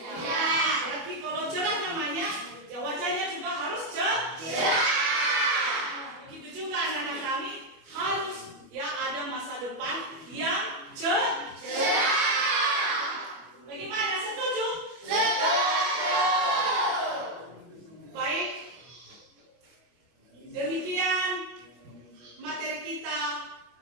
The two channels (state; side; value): late; left; 25 ms